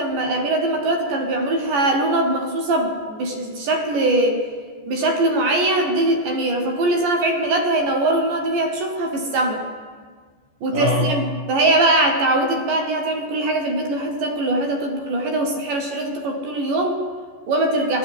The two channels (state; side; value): late; left; 14 ms